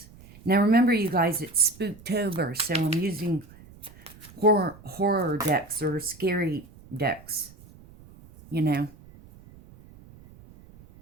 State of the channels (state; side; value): noise; right; rumble, 22 dB below the sound